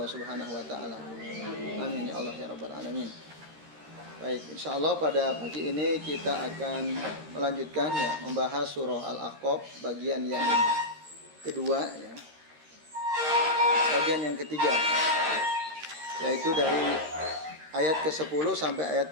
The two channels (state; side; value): late; left; 13 ms